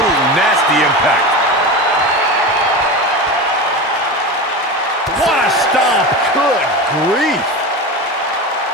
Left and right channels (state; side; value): normal; both; correlation 0.25